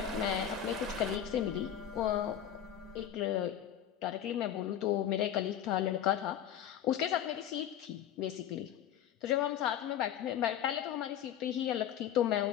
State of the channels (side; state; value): right; quieter; 10.1 dB